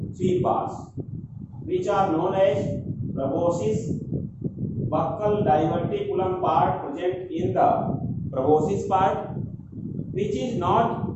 three parts, which are known as proboscis, buccal diverticulum part present in the proboscis part, which is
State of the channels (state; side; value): identical; both; correlation 1.00